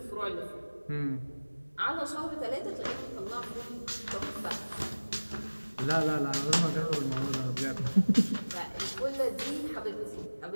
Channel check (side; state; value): both; inverted; correlation -1.00